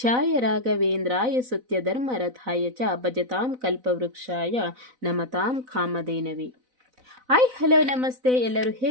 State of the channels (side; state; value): left; late; 4.0 ms